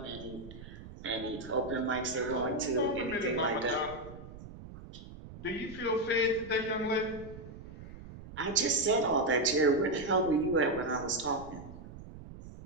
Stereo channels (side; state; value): right; noise; rumble, 14 dB below the sound